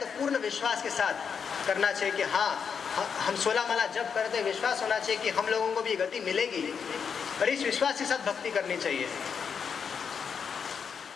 पूर्ण विश्वास के साथ करना चाहिए कि हाँ, हम 16 माला जप करते हैं, विश्वास होना चाहिए कि हम लोगों को भी गति मिलेगी, और इस विश्वास के साथ भक्ति करनी चाहिए।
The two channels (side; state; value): right; quieter; 6.6 dB